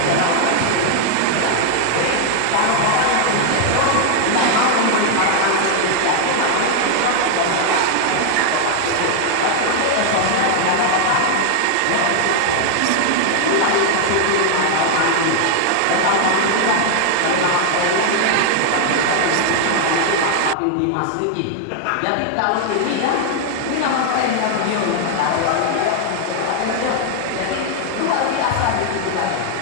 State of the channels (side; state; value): both; different; correlation 0.00